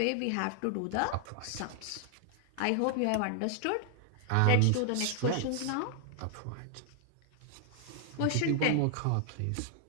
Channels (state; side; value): different; both; correlation 0.00